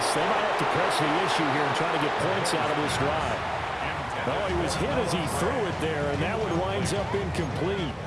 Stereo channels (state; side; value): identical; both; correlation 1.00